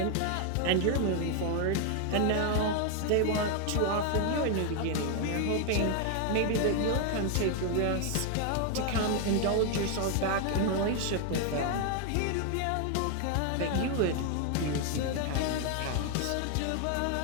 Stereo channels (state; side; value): different; both; correlation 0.01